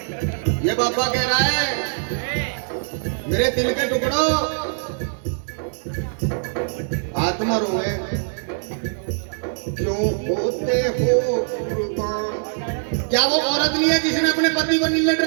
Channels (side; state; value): left; silent; digital silence